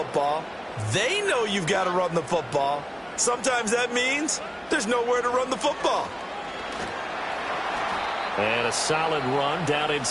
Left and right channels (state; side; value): identical; both; correlation 1.00